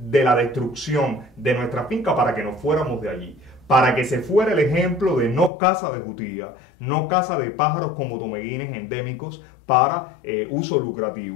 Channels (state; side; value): drops out; right; at 5.5 s